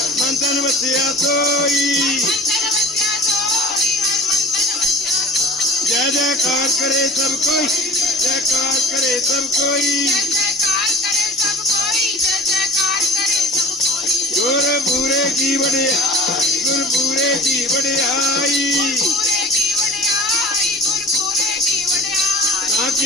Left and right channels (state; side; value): normal; both; correlation 0.40